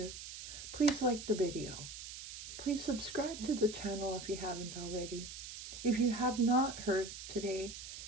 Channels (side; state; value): right; noise; hiss, 10 dB below the sound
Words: Please like the video. Please subscribe to the channel if you haven't already. If you have not heard today,